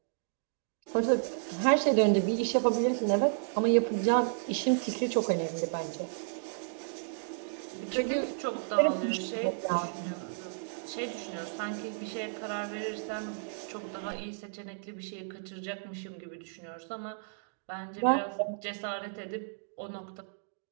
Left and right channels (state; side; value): silent; left; digital silence